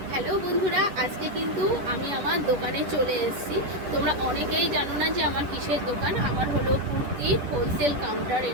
Hello বন্ধুরা, আজকে কিন্তু আমি আমার দোকানে চলে এসেছি। তোমরা অনেকেই জানো না যে আমার কিসের দোকান। আমার হলো কুর্তি হোলসেল কাউন্টার।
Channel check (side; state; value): left; late; 11 ms